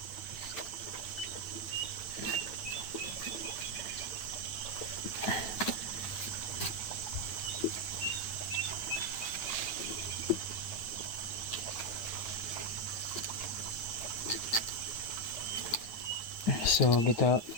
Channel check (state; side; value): late; right; 9.3 ms